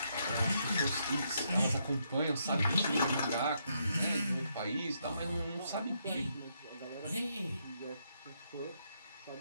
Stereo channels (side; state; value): both; inverted; correlation -0.77